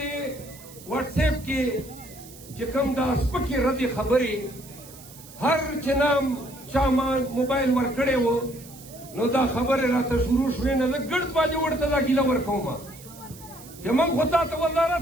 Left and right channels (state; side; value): noise; right; hiss, 19 dB below the sound